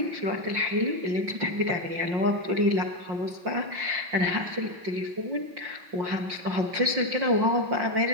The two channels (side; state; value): left; late; 5.6 ms